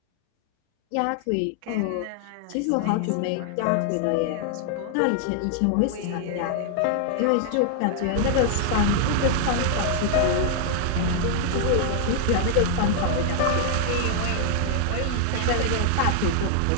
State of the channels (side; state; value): both; different; correlation 0.00